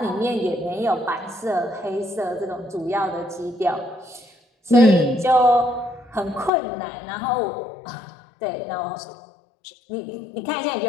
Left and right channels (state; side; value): drops out; right; at 6.5 s